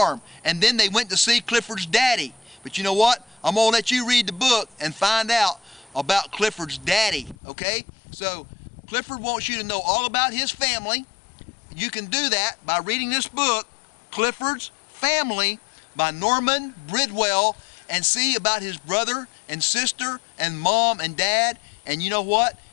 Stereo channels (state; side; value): drops out; right; at 7.4 s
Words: And then they went to see Clifford's daddy. But you know what? I'm going to let you read the book and find out about Clifford's daddy, okay? So Clifford wants you to know all about his family. You can do that by reading this book, Clifford's Family, by Norman Bridwell, and see about his brother and sister and mom and dad. And you know what?